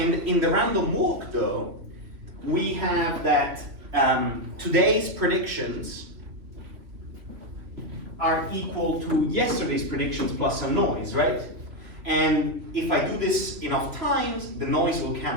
in the random walk though, we have that today's predictions are equal to yesterday's predictions plus some noise, right? And if I do this enough times, the noise will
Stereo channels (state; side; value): late; left; 3.0 ms